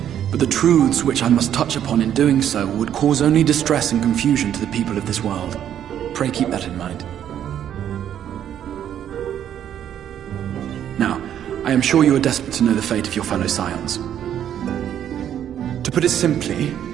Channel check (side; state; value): left; quieter; 10.1 dB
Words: but the truths which I must touch upon in doing so would cause only distress and confusion to the people of this world. Pray keep that in mind. Now, I am sure you are desperate to know the fate of your fellow Scions. To put it simply,